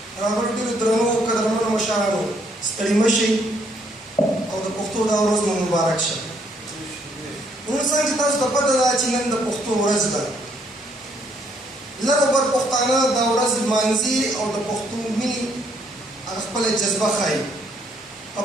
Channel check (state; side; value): normal; both; correlation 0.69